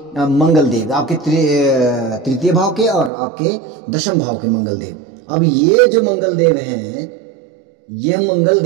मंगल देव, आपके तृतीय भाव के और आपके दशम भाव के मंगल देव। अब ये जो मंगल देव हैं, ये मंगल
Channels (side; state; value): left; drops out; at 3.1 s